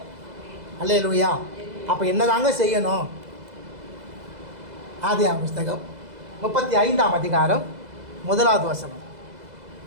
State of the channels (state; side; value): late; left; 2.0 ms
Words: அல்லேலூயா. அப்போ என்னதாங்க செய்யணும்? ஆதியாகம புஸ்தகம் 35ஆம் அதிகாரம் 1வது வசனம்.